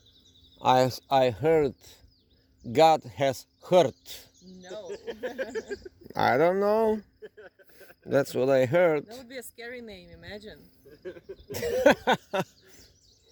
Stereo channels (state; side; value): identical; both; correlation 1.00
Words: I heard. God has heard. No. I don't know. That's what I heard. That would be a scary name, imagine.